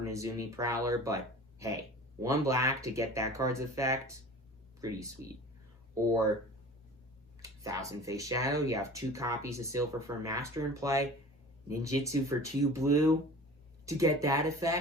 Nezumi Prowler, but hey, 1 black to get that card's effect, pretty sweet. Or Thousand Face Shadow, you have 2 copies of Silver Fur Master in play. Ninjitsu for 2 blue to get that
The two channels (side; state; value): both; normal; correlation 0.40